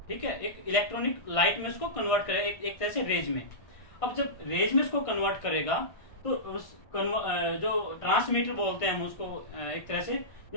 ठीक है, एक इलेक्ट्रॉनिक लाइट में उसको कन्वर्ट करेगा, एक तरह से रेज में। अब जब रेज में उसको कन्वर्ट करेगा तो जो ट्रांसमीटर बोलते हैं हम उसको, एक तरह से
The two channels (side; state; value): right; late; 1.5 ms